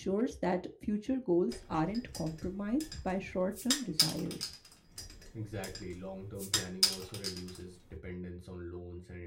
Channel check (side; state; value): both; identical; correlation 1.00